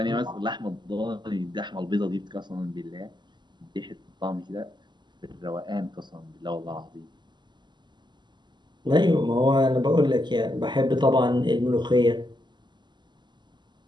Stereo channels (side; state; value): left; late; 0.21 ms